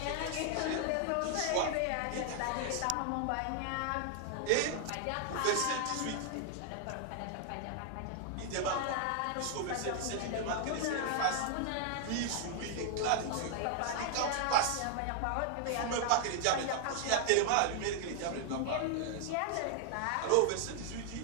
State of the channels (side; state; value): both; different; correlation 0.00